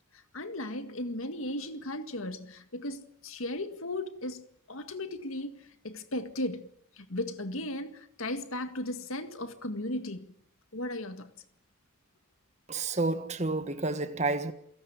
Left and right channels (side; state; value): both; normal; correlation 0.15